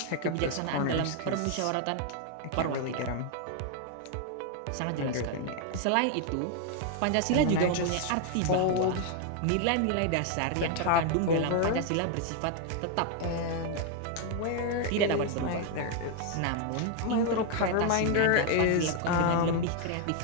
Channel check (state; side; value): different; both; correlation 0.00